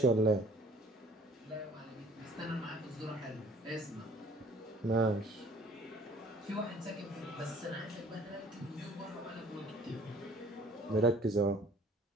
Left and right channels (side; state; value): both; normal; correlation 0.54